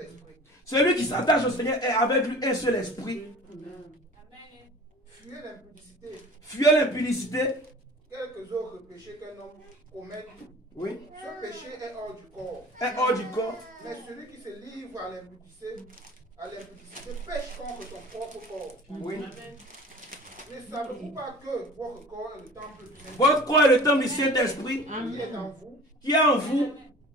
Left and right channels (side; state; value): both; normal; correlation 0.43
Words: esprit. Celui qui s'attache au Seigneur est avec lui un seul esprit. Amen. Fuyez l'impudicité. Fuyez l'impudicité. Quelques autres péchés qu'un homme commette. Oui. Ce péché est hors du corps. Est hors du corps. Mais celui qui se livre à l'impudicité pêche contre son propre corps. Oui. Amen. Ne savez-vous pas que votre corps est le temple du Saint-Esprit? Votre corps est le temple du Saint-Esprit qui est en vous. Qui est en vous.